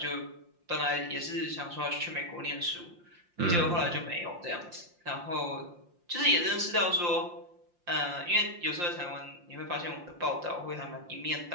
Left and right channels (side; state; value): left; late; 5.7 ms